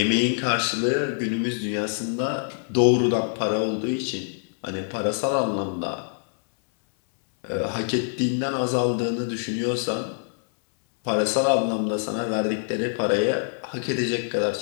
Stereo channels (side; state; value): right; silent; 62 dB below the other